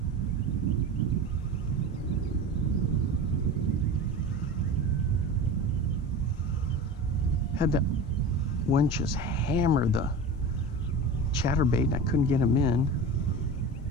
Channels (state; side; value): normal; both; correlation 0.31